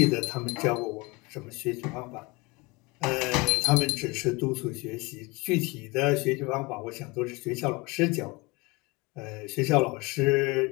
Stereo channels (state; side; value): quieter; right; 24.7 dB